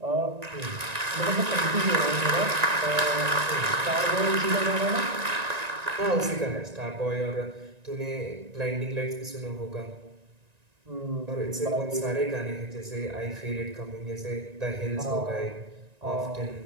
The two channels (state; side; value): late; left; 1.9 ms